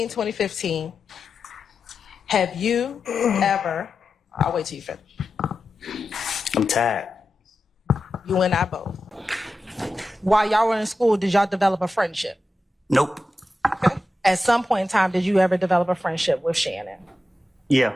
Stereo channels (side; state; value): both; normal; correlation 0.91